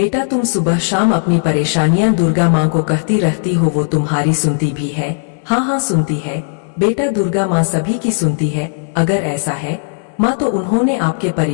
तुम सुबह शाम अपनी परेशानियां दुर्गा माँ को कहती रहती हो, वो तुम्हारी सुनती भी है? हाँ हाँ, सुनती है बेटा, दुर्गा माँ सभी की सुनती है। अगर ऐसा है माँ, तो उन्होंने आपके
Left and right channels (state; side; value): silent; right; digital silence